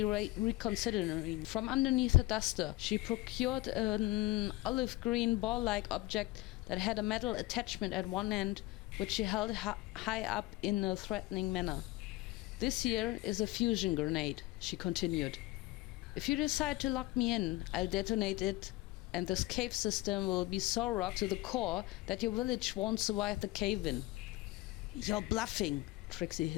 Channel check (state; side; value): quieter; right; 19.5 dB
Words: reconsidering. From underneath a duster, she procured an olive green ball-like object that had a metal attachment at one end, which she held high up in a threatening manner. This here is a fusion grenade, she continued. If you decide to lock me in, I'll detonate it, and this cave system will be so rocked to the core that your village won't survive the cave-in. You're bluffing, Trixie